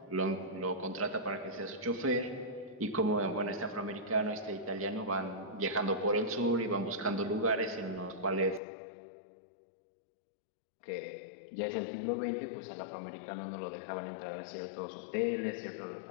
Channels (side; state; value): right; drops out; at 8.6 s